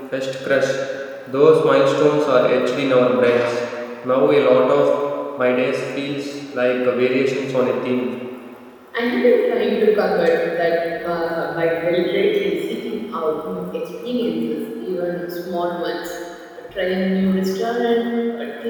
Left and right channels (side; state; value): both; identical; correlation 1.00